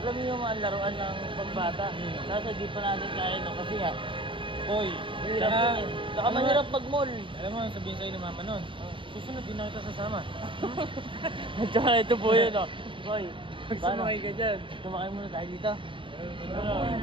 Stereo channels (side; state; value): left; late; 0.25 ms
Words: alam mo yung mga laruan ng pambata. Nasa di pa natin kaya no kasi nga. Boy, Hirap yun eh. Saka mahirap pag-mall. Alam mo, sabihin sa'yo ni mama nun. Susunod din na kita sasama. At saka ito po yun oh. Boy, Pag paano? sumakay ka dyan. Sumakay muna tayo dito.